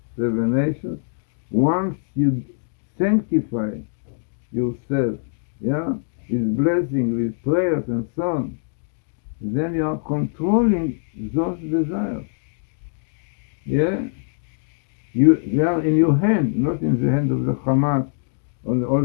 7 nations. Once you sanctify yourself, with blessing, with prayers and so on, then you are controlling those desires. They are in your hand, not in the hand of the Hamas or all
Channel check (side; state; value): right; silent; digital silence